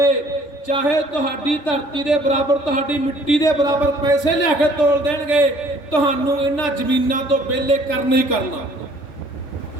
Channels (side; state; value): right; late; 3.4 ms